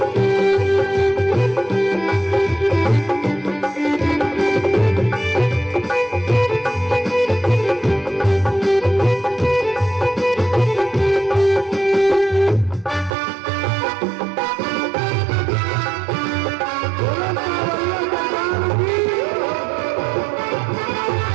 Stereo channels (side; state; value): left; drops out; at 13.2 s